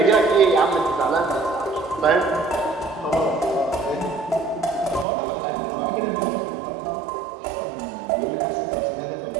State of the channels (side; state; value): left; drops out; at 5.1 s